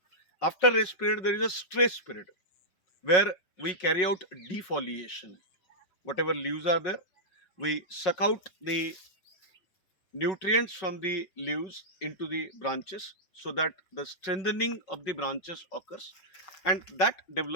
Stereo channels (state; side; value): late; right; 5.4 ms